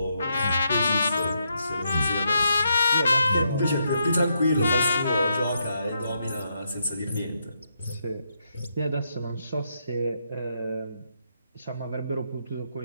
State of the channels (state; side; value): inverted; both; correlation -0.79